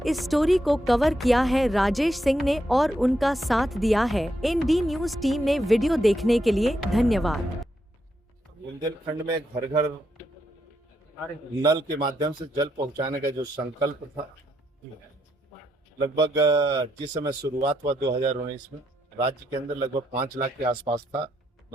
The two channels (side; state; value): both; normal; correlation 0.79